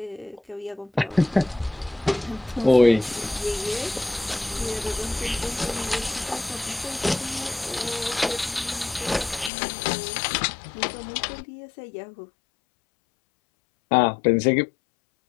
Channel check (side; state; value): right; drops out; at 9.5 s